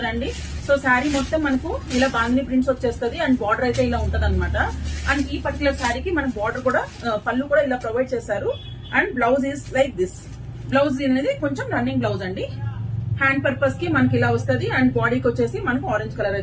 సో శారీ మొత్తం మనకు ఇలా బాందిని ప్రింట్స్ వచ్చేస్తుంది. అండ్ బార్డర్ అయితే ఇలా ఉంటది అనమాట. అండ్ ఈ పర్టికులర్ శారీకి మనకు బార్డర్ కూడా పళ్ళు కూడా ఇలా ప్రొవైడ్ చేశారు. And blouse is like this. Blouse అనేది కొంచెం రన్నింగ్ బ్లౌజ్ అండి. హ్యాండ్ పర్పస్ కి మనకి ఇలా వస్తుంది. అండ్ బాడీకి వచ్చేసి మనకు ఆరెంజ్ కలర్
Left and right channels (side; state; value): both; identical; correlation 1.00